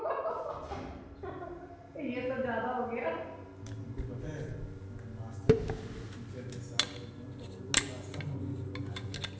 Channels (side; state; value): both; identical; correlation 1.00